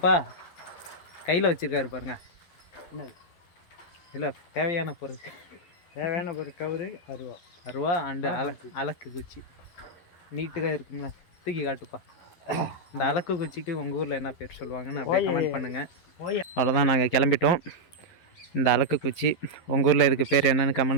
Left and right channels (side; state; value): right; late; 11 ms